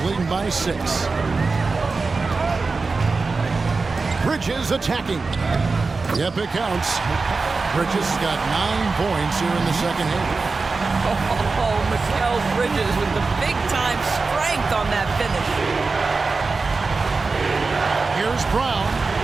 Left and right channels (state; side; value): quieter; left; 4.1 dB